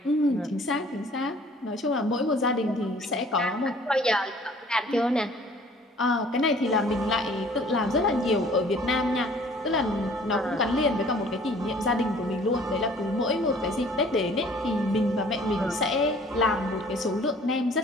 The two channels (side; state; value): both; normal; correlation 0.53